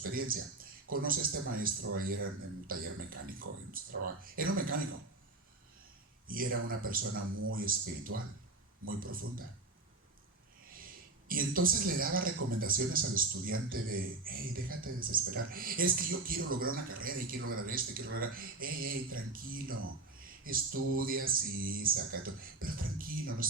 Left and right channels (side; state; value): left; quieter; 3.3 dB